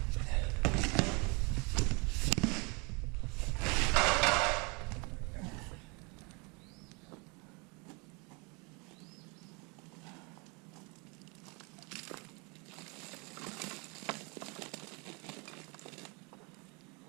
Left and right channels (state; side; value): quieter; left; 30.4 dB